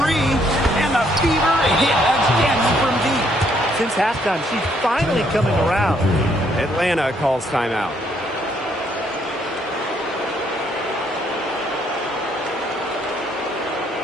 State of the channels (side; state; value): both; normal; correlation 0.69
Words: 3. And the Fever hit again from deep. Since halftime, she's finally coming around. Atlanta calls timeout.